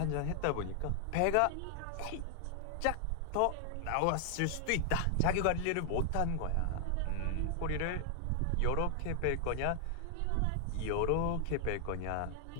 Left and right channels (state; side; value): different; both; correlation 0.00